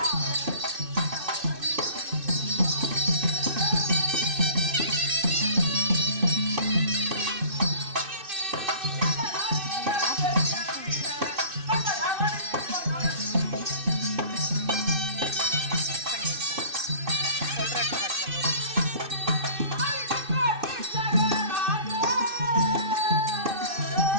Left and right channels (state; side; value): late; left; 2.6 ms